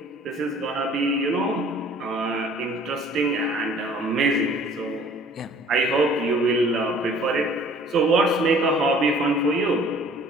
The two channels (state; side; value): normal; both; correlation 0.52